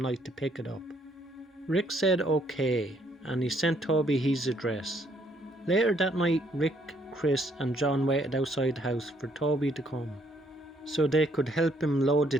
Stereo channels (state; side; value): normal; both; correlation 0.68